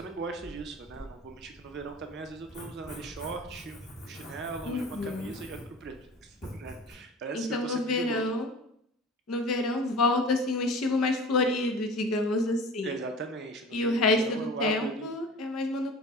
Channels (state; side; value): normal; both; correlation 0.38